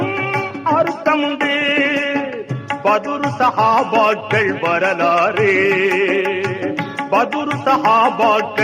அர்த்தமுண்டு. பதுரு சஹாபாக்கள் வரலாறு, பதுரு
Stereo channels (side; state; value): both; identical; correlation 1.00